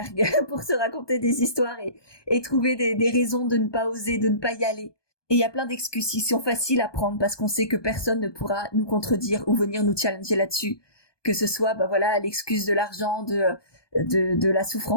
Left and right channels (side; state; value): right; late; 1.2 ms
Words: pour se raconter des histoires et trouver des raisons de ne pas oser, de ne pas y aller. Et il y a plein d'excuses qui sont faciles à prendre parce qu'on sait que personne ne pourra nous contredire ou venir nous challenger là-dessus. Que ce soit, l'excuse de l'argent, de la